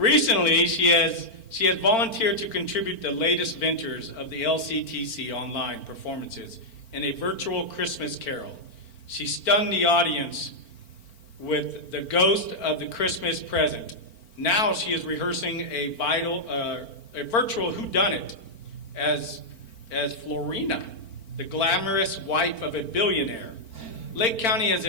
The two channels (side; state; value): right; late; 4.4 ms